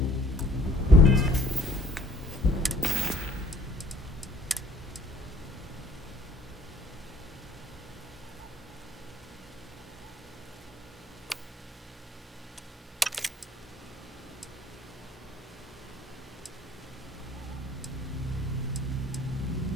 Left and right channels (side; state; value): both; normal; correlation 0.57